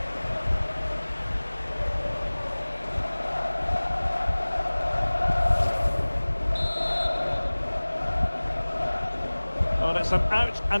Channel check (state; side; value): inverted; both; correlation -1.00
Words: Well, it's an